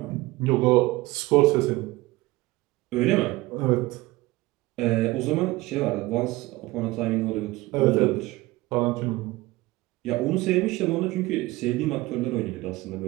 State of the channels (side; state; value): left; quieter; 20.0 dB